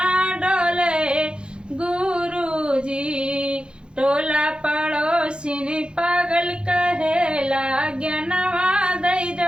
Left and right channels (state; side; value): late; left; 0.053 ms